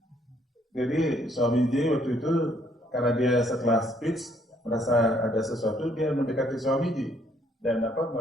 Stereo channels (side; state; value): both; normal; correlation 0.67